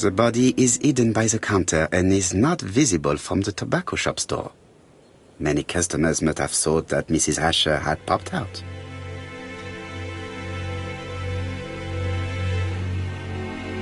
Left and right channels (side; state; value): both; identical; correlation 1.00